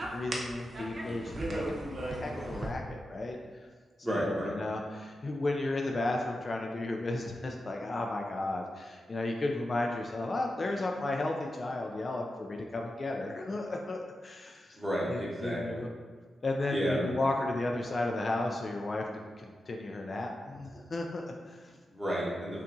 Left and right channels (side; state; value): both; normal; correlation 0.90